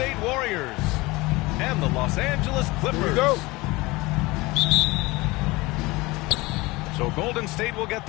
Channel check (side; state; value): right; quieter; 22.1 dB